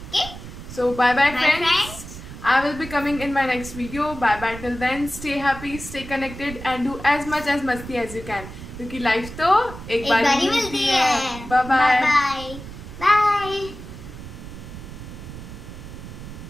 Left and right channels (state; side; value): noise; right; rumble, 12 dB below the sound